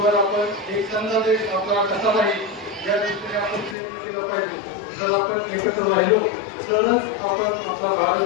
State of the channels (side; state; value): right; drops out; at 3.8 s